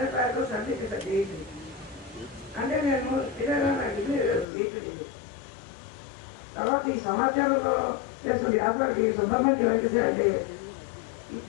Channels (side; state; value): right; drops out; at 4.5 s